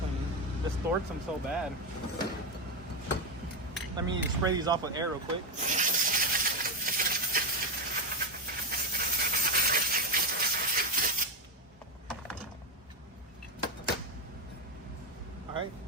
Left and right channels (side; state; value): both; normal; correlation 0.11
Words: Distorts them so bad. Let me spray these off with air real quick. Alright,